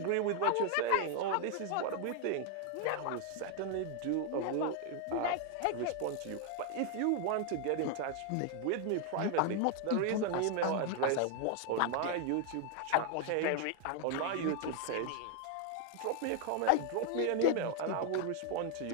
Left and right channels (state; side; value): different; both; correlation 0.00